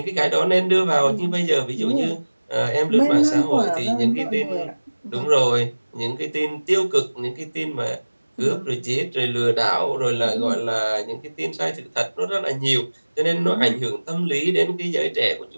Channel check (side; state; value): both; inverted; correlation -1.00